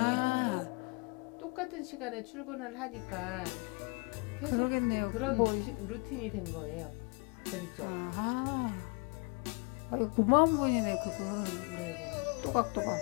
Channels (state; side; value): quieter; right; 33.0 dB